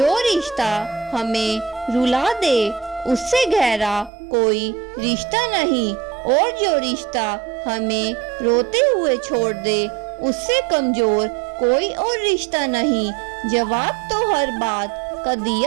रिश्ता हमें रुला दे उससे गहरा कोई रिश्ता नहीं, और जो रिश्ता हमें रोते हुए छोड़ दे उससे कमजोर कोई और रिश्ता नहीं। जवाब तो हर बात का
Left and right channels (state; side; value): drops out; left; at 4.1 s